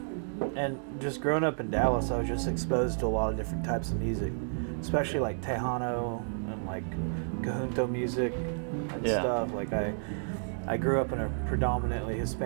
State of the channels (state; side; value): silent; left; digital silence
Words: And just growing up in Dallas, I was just exposed to a lot of different types of music, especially like Tejano and like Cajunto music and stuff. Like I grew up in a predominantly